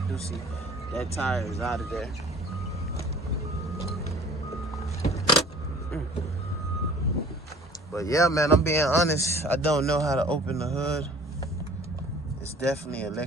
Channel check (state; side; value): normal; both; correlation 0.48